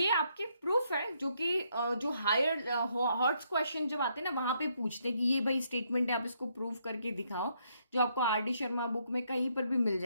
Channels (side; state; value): both; inverted; correlation -0.74